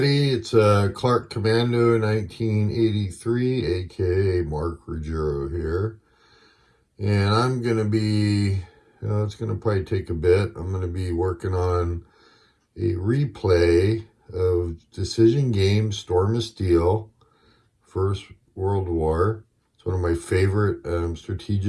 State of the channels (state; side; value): identical; both; correlation 1.00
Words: it's Clark Commando 1983, aka Mark Ruggiero here. And I'm going to be, it's going to probably take a bit. I'm going to be working on a replay of Decision Game Storm of Steel, First World War. It's one of my favorite